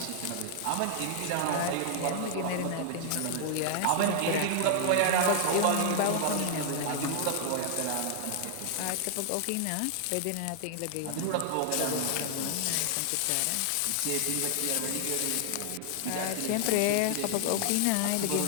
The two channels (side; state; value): both; different; correlation 0.00